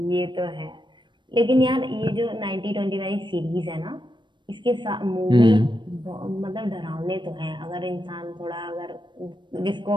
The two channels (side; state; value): left; late; 0.22 ms